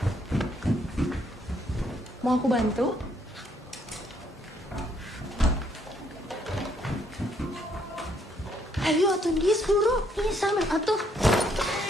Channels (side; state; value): both; normal; correlation 0.70